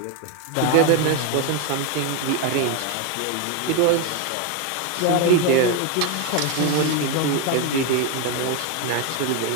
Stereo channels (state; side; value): different; both; correlation 0.02